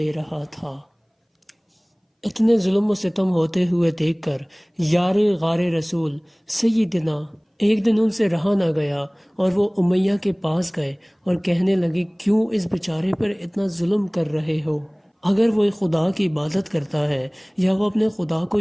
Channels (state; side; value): identical; both; correlation 1.00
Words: رہا تھا۔ اتنے ظلم و ستم ہوتے ہوئے دیکھ کر یار غار رسول سیدنا ایک دن ان سے رہا نہ گیا اور وہ امیہ کے پاس گئے اور کہنے لگے، کیوں اس بیچارے پر اتنا ظلم کر رہے ہو؟ اگر وہ خدا کی عبادت کرتا ہے یا وہ اپنے خدا کو